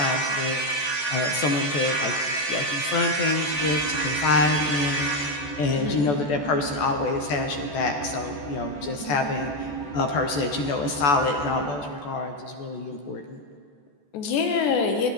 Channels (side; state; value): right; late; 14 ms